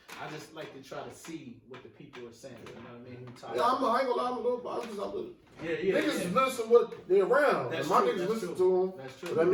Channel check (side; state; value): both; identical; correlation 1.00